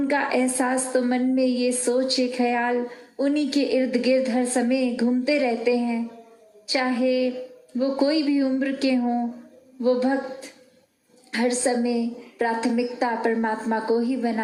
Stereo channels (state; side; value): identical; both; correlation 1.00